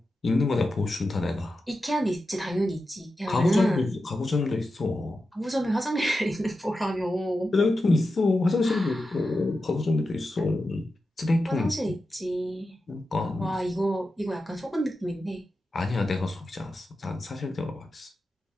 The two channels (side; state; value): both; normal; correlation 0.91